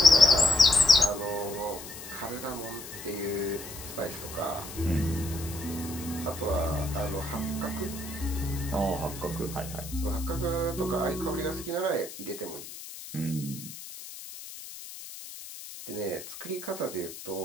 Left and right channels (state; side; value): noise; left; hiss, 13 dB below the sound